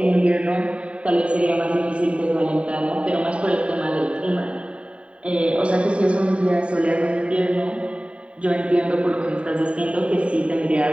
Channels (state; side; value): late; left; 0.061 ms